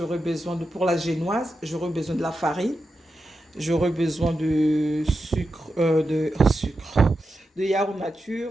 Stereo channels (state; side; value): normal; both; correlation 0.89